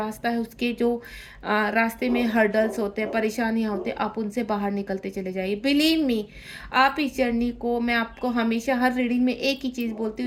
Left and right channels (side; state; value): both; identical; correlation 1.00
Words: है, उसके जो रास्ते में हर्डल्स होते हैं, परेशानियां होते हैं, आप उनसे बाहर निकलते चले जाइए। बिलीव मी, आप इस जर्नी को, मैं आपको हमेशा हर रीडिंग में एक ही चीज़ बोलती